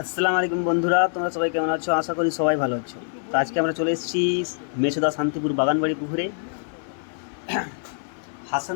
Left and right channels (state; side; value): silent; right; 62 dB below the other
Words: আসসালামু আলাইকুম বন্ধুরা, তোমরা সবাই কেমন আছো? আশা করি সবাই ভালো আছো। তো আজকে আমরা চলে এসেছি মেচেদা শান্তিপুর বাগানবাড়ি পুকুরে।